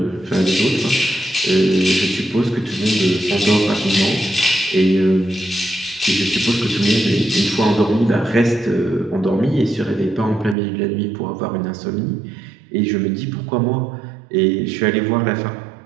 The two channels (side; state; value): left; drops out; at 10.6 s